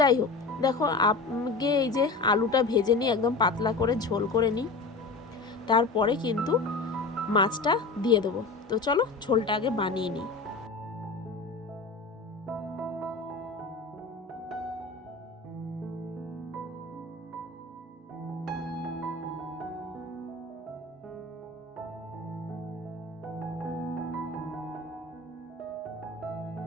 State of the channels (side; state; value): right; quieter; 3.7 dB